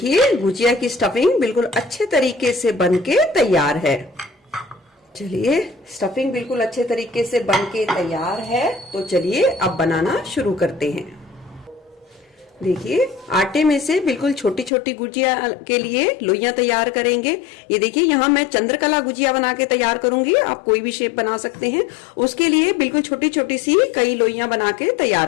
गुजिया की स्टफिंग बिल्कुल अच्छे तरीके से बनके तैयार है। चलिए स्टफिंग बिल्कुल अच्छे तरीके से बनके तैयार है, तो चलिए अब बनाना शुरू करते हैं। देखिए आटे में से बिल्कुल छोटी छोटी गुजिया के लिए लोइयां तैयार करेंगे। ये देखिए यहाँ मैं चंद्रकला गुजिया बना के तैयार करूंगी, आप कोई भी शेप बना सकते हैं। उसके लिए बिल्कुल छोटी छोटी सी कई लोइयां बना के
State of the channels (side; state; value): right; drops out; at 14.7 s